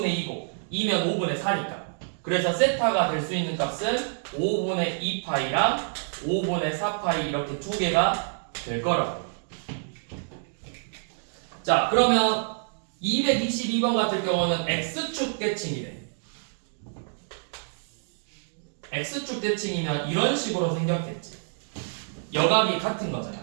2고 2면 5분의 4니까. 그래서 세타가 될 수 있는 값은 5분의 2파이랑 5분의 4파이 이렇게 두 개가 될 거라고. 자, 그러면 222번 같은 경우는 x축 대칭이래. x축 대칭이면 이런 식으로 생겼겠지. 여각이 같은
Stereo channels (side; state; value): left; silent; digital silence